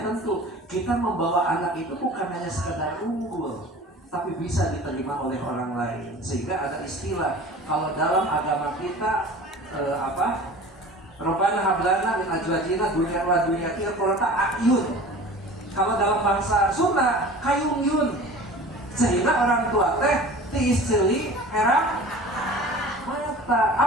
tentu kita membawa anak itu bukan hanya sekedar unggul, tapi bisa diterima oleh orang lain. Sehingga ada istilah kalau dalam agama kita Rabbana hablana min azwajina dzurriyyatan qurrata a'yun. Kalau dalam bahasa Sunda kayung yun. Sehingga orang tua teh ti istri herang mata.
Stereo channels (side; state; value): both; normal; correlation 0.40